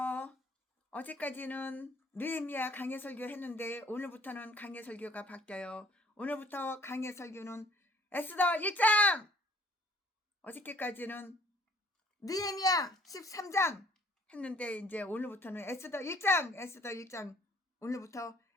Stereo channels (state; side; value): normal; both; correlation 0.59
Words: 어제까지는 느헤미야 강의 설교 했는데 오늘부터는 강의 설교가 바뀌어요. 오늘부터 강의 설교는 에스더 1장! 어저께까지는 느헤미야 13장 했는데 이제 오늘부터는 에스더 1장 오늘부터